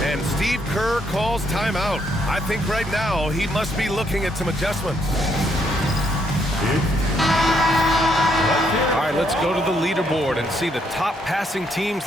And Steve Kerr calls timeout. I think right now he must be looking at some adjustments. All right, let's go to the leaderboard and see the top passing teams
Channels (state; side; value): normal; both; correlation 0.73